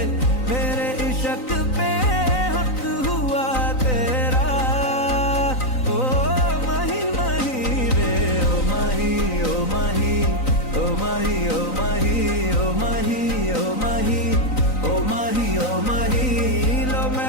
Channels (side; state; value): right; late; 3.9 ms